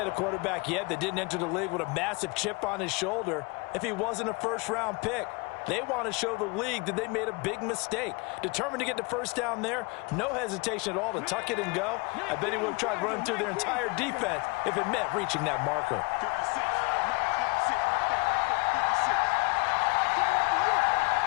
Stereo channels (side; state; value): right; quieter; 28.9 dB